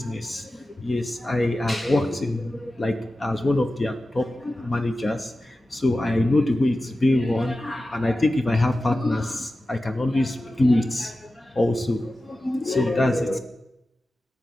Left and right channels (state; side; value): normal; both; correlation 0.94